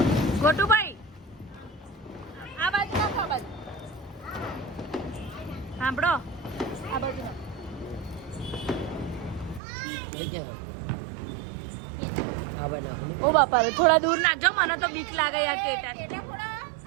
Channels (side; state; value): left; drops out; at 9.6 s